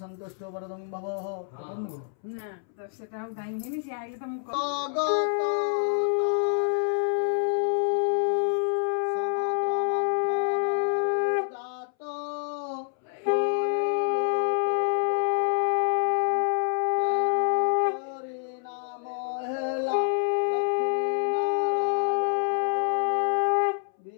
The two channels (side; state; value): right; silent; 60 dB below the other